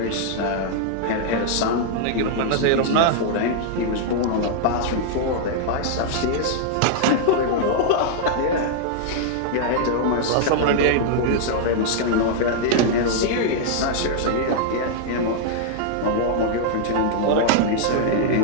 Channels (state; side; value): different; both; correlation -0.01